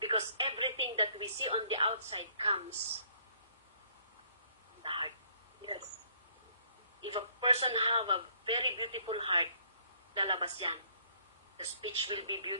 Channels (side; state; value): both; inverted; correlation -0.63